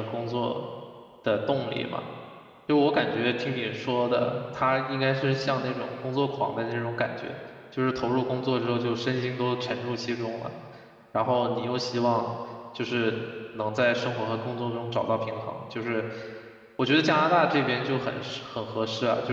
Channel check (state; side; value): identical; both; correlation 1.00